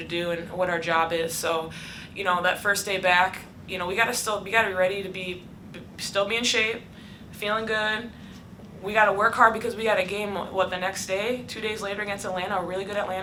do, and what our job is. So, you know, that first day back, you know, we got to be ready to still be in shape, feeling good. We got to work hard because we got a game, the next day, 2 days later against Atlanta, a really good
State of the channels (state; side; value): identical; both; correlation 1.00